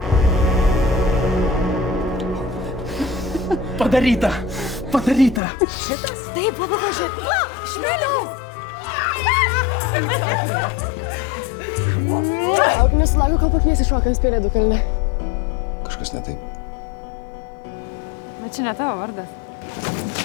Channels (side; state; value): right; drops out; at 5.4 s